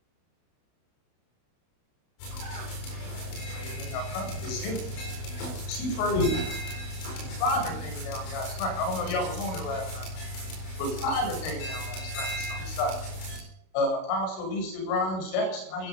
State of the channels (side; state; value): right; late; 32 ms